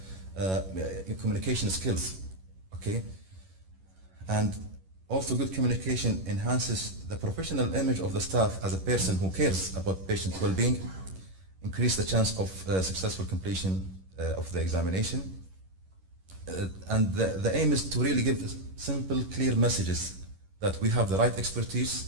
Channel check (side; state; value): left; late; 11 ms